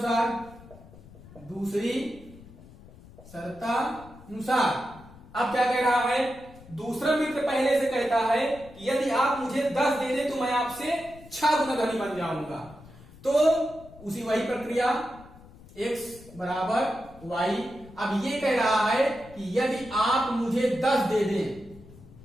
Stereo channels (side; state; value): left; noise; rumble, 21 dB below the sound